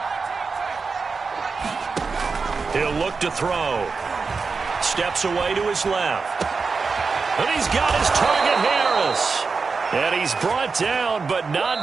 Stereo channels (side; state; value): left; quieter; 4.7 dB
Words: He'll look to throw. Steps away to his left. And he's got his target, Harris. And he's brought down, but not